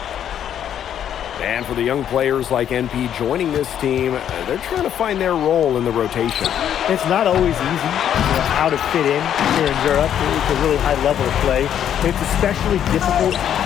And for the young players like NP joining this team, they're trying to find their role in the rotation. It's not always easy how to fit in here in Europe. It's a really high level of play. It's especially difficult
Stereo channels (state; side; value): quieter; right; 9.8 dB